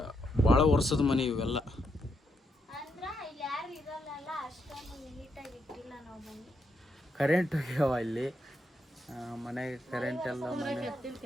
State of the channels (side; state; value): both; normal; correlation 0.80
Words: ಭಾಳ ವರ್ಷದ ಮನೆ ಇವೆಲ್ಲ. ಕರೆಂಟ್ ಹೋಗ್ಯಾವ ಇಲ್ಲಿ ಮನೆಗೆ. ಕರೆಂಟ್ ಎಲ್ಲ